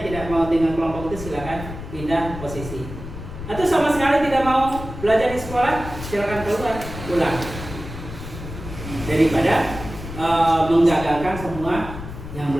tidak mau dengan kelompok itu, silakan pindah posisi. Atau sama sekali tidak mau belajar di sekolah, silakan keluar, pulang. Daripada menggagalkan semua yang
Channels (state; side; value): noise; left; rumble, 10 dB below the sound